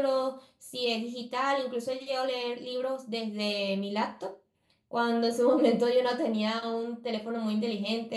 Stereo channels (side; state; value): both; identical; correlation 1.00